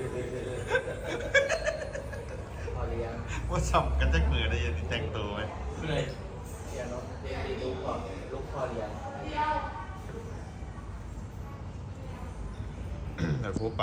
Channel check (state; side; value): identical; both; correlation 1.00